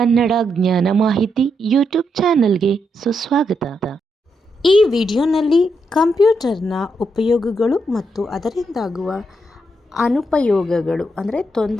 ಜ್ಞಾನ ಮಾಹಿತಿ ಯೂಟ್ಯೂಬ್ ಚಾನಲ್ಗೆ ಸುಸ್ವಾಗತ. ಈ ವಿಡಿಯೋನಲ್ಲಿ ಕಂಪ್ಯೂಟರ್ನ ಉಪಯೋಗಗಳು ಮತ್ತು ಅದರಿಂದಾಗುವ ಅನುಪಯೋಗಗಳು ಅಂದರೆ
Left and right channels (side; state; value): both; normal; correlation 0.81